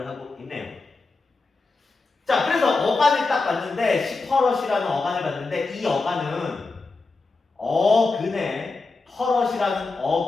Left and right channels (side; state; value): right; quieter; 3.7 dB